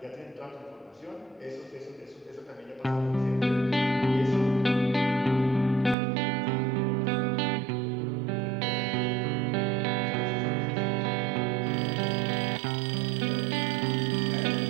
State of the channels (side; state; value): left; drops out; at 6.0 s